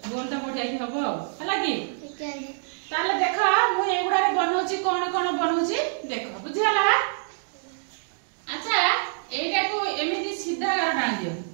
गोलटा बढ़िया की हबो हला की ठीक है ताले देखा मु एगुडा रे बनौछि कोन कोन बनौछि देखो बुझियला अच्छा एटा को एमिति सीधा डाल दियो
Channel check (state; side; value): silent; left; digital silence